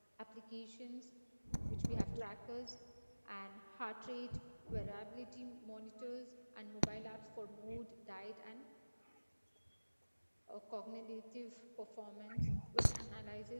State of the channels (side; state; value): both; inverted; correlation -1.00